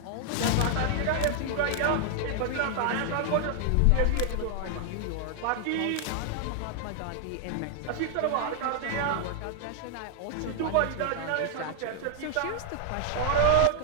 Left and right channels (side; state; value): both; different; correlation 0.00